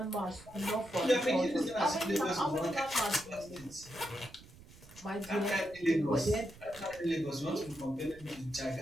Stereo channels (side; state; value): right; noise; rumble, 20 dB below the sound